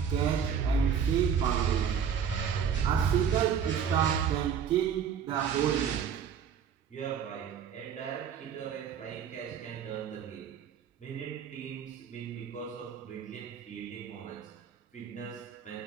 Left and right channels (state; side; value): quieter; left; 7.6 dB